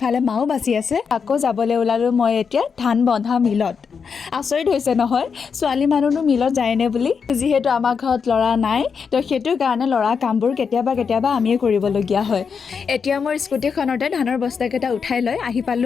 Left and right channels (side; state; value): right; quieter; 6.0 dB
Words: মাও বাচি আছে। আকৌ যাবলৈ ওলালোঁ মই এতিয়া ধান বন্ধা মিলত। আচৰিত হৈছে নহয়, ছোৱালী মানুহনো মিলত যায়নে বুলি। যিহেতু আমাৰ ঘৰত ল'ৰা নাই, তো সেইটো কাৰণে ল'ৰা কামবোৰ কেতিয়াবা আমিয়ে কৰিবলগীয়া হয়। এতিয়া মোৰ স্কুটিখনতে ধানৰ বস্তাকেইটা উঠাই লৈ আহি